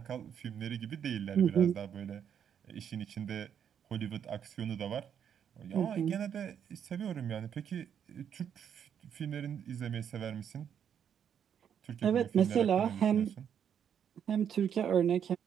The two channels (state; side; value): quieter; left; 8.4 dB